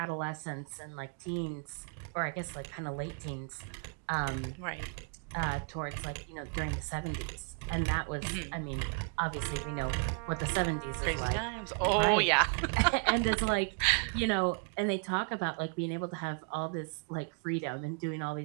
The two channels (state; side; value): quieter; left; 38.3 dB